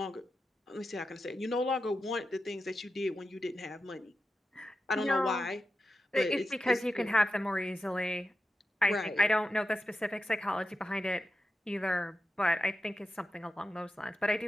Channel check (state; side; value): normal; both; correlation 0.90